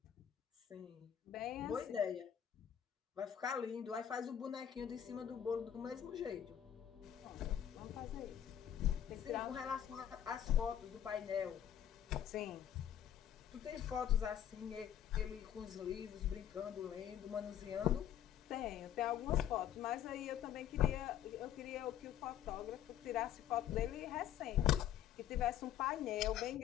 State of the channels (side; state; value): right; quieter; 10.3 dB